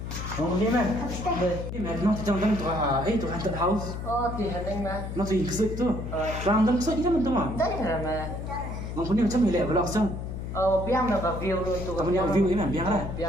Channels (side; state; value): left; noise; hum, 6 dB below the sound